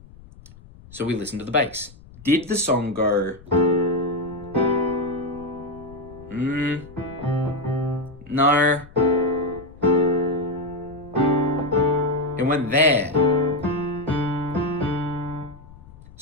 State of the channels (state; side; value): noise; left; rumble, 21 dB below the sound